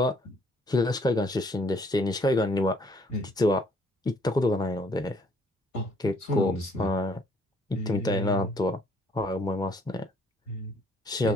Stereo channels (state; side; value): normal; both; correlation 0.63